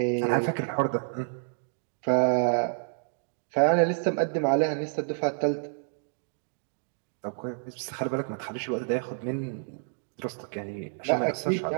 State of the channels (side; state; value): left; silent; 59 dB below the other